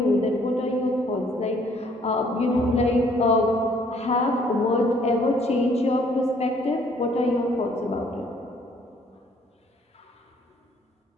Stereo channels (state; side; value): normal; both; correlation 0.62